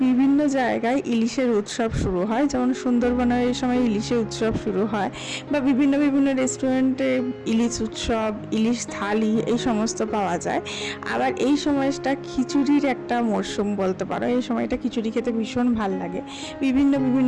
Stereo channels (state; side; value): identical; both; correlation 1.00